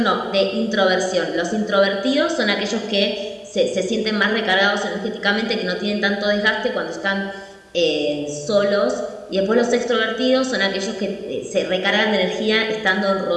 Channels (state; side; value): identical; both; correlation 1.00